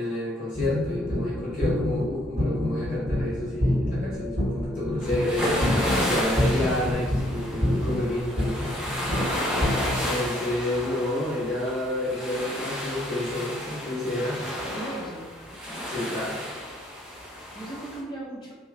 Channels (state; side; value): normal; both; correlation 0.67